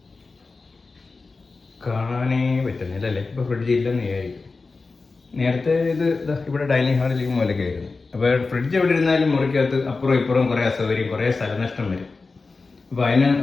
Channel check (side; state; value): right; quieter; 4.0 dB